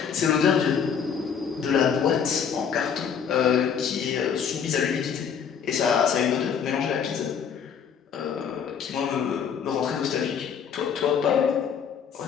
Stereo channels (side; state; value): right; quieter; 7.3 dB